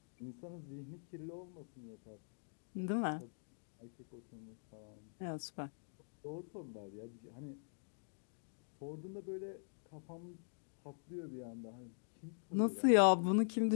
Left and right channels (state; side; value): silent; right; digital silence